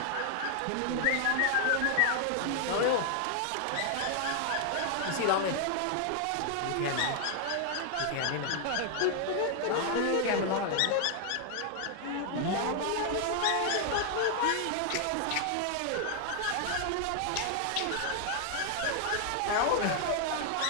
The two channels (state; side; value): different; both; correlation 0.00